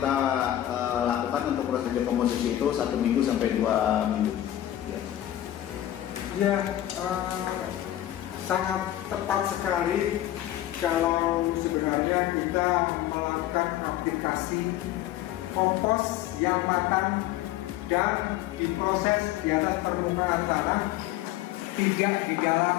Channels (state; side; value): quieter; right; 13.2 dB